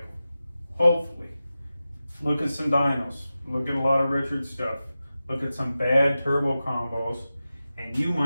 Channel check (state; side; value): inverted; both; correlation -0.94